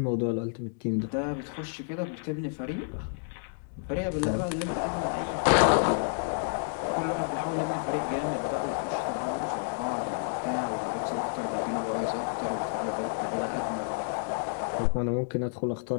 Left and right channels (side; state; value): right; silent; digital silence